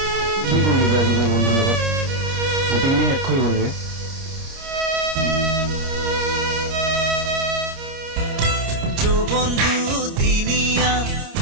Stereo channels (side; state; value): left; late; 30 ms